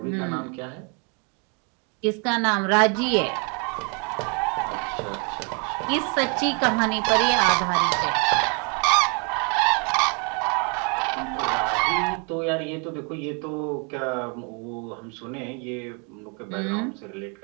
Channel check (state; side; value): quieter; left; 35.4 dB